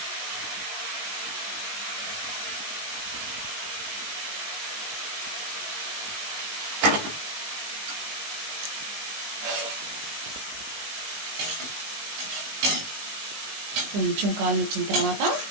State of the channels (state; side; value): late; left; 19 ms